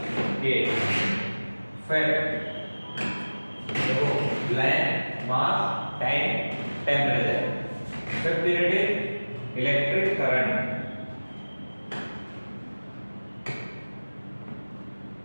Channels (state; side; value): inverted; both; correlation -1.00